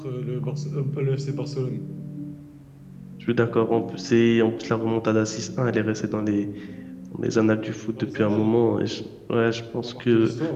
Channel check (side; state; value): both; identical; correlation 1.00